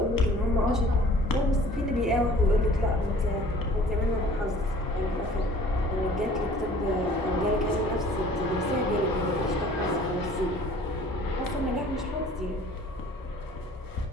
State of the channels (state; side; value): normal; both; correlation 0.51